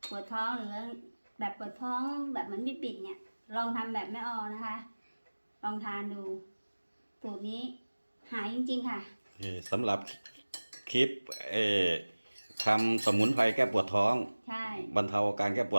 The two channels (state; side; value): inverted; both; correlation -1.00